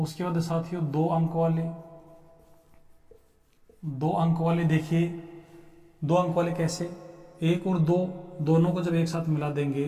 बाद साथियों 2 अंक वाले देखिए 2 अंक वाले कैसे, 1 और 2 दोनों को जब एक साथ मिला देंगे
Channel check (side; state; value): both; identical; correlation 1.00